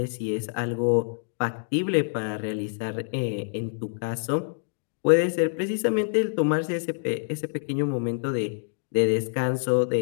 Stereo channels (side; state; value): right; silent; digital silence